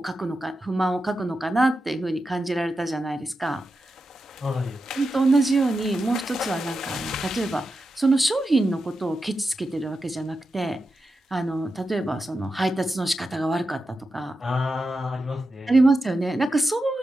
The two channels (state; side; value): normal; both; correlation 0.90